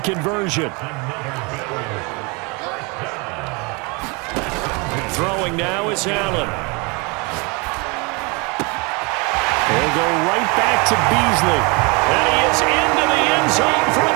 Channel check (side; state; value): left; quieter; 29.4 dB